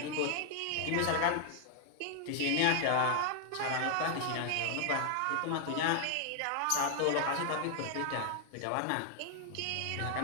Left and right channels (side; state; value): both; different; correlation 0.00